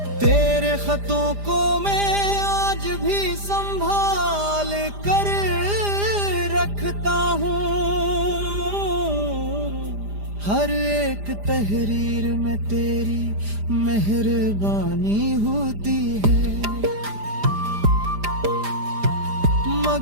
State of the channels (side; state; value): left; late; 5.0 ms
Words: तेरे खतों को मैं आज भी संभाल कर रखता हूँ, हर एक तहरीर में तेरी मेहरबानी होती है।